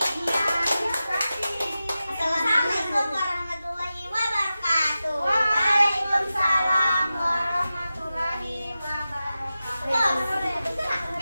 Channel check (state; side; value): inverted; both; correlation -0.93